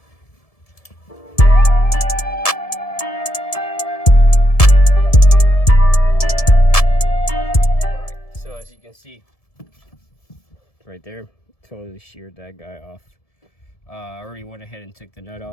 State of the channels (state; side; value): late; right; 1.7 ms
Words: All right, so as you can see, right there, totally sheared that guy off. I already went ahead and took the nut